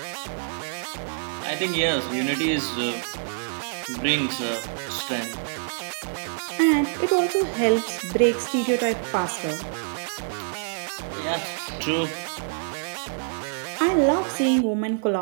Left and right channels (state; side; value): silent; left; digital silence